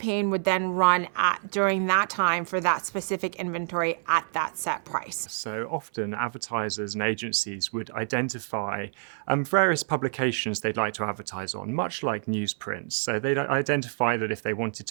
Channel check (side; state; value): left; silent; 56 dB below the other